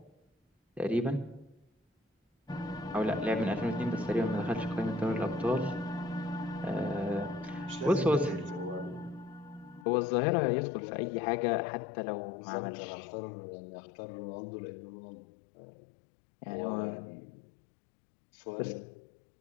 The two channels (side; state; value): right; drops out; at 9.9 s